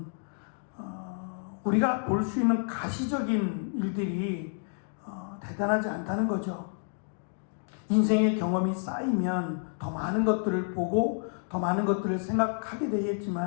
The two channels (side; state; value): right; silent; 57 dB below the other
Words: 우리가 볼 수 있는 가시적인 일들이 대단하지 않다는 거죠. 인생의 경험이 쌓이면 더 많은 것들을 보고 더 많은 것들을 생각하게